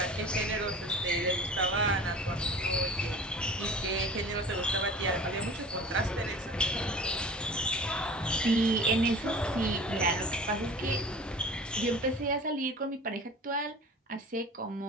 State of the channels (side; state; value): both; normal; correlation 0.41